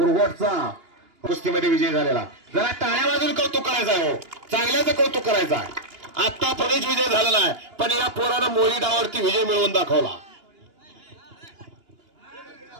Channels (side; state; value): left; late; 2.9 ms